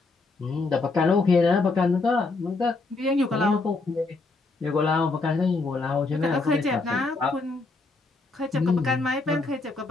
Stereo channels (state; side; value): quieter; right; 3.7 dB